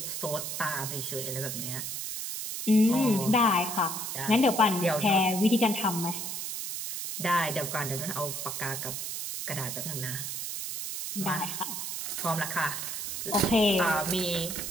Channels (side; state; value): right; noise; hiss, 5 dB below the sound